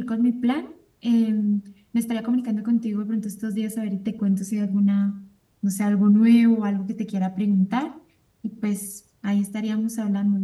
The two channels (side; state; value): both; identical; correlation 1.00